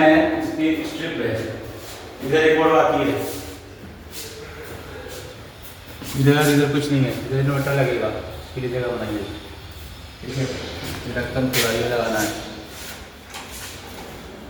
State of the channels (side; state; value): both; identical; correlation 1.00